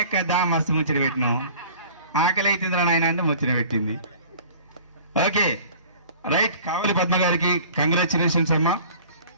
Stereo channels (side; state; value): both; inverted; correlation -0.46